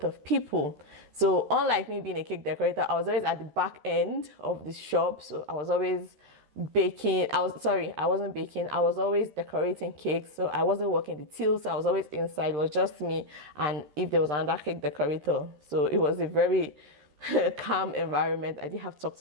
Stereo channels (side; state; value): left; late; 13 ms